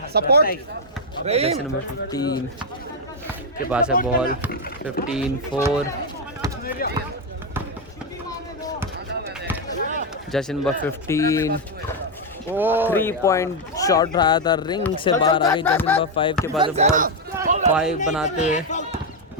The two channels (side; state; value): both; normal; correlation 0.03